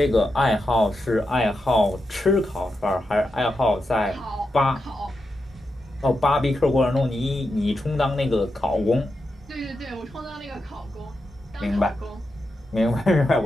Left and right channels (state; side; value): normal; both; correlation 0.87